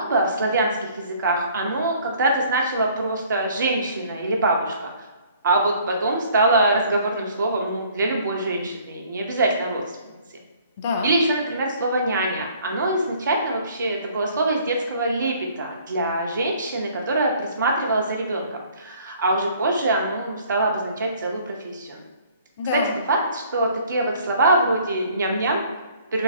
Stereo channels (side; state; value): both; inverted; correlation -0.57